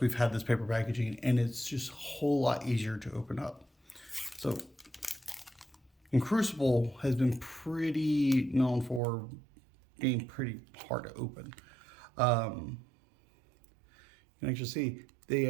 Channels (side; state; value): left; drops out; at 9.0 s